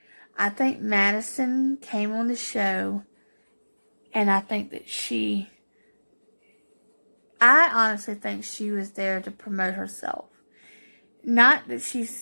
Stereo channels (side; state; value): both; inverted; correlation -1.00